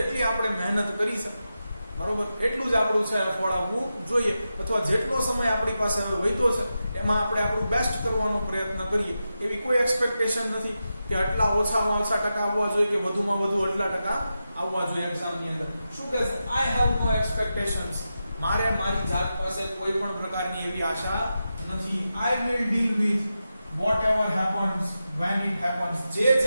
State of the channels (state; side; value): inverted; both; correlation -0.90